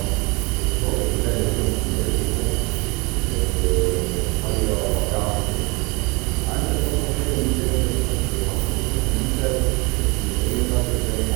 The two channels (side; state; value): left; quieter; 27.5 dB